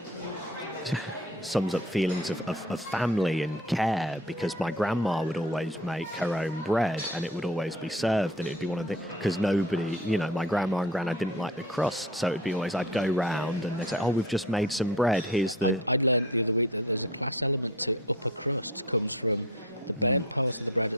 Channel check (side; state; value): both; normal; correlation 0.39